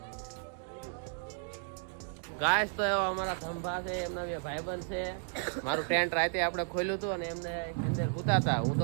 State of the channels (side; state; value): left; silent; 55 dB below the other